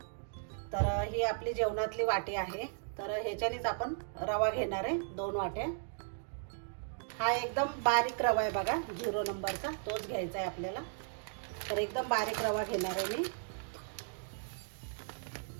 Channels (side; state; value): left; silent; digital silence